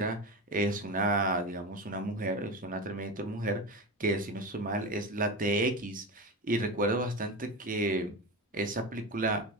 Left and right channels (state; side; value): normal; both; correlation 0.23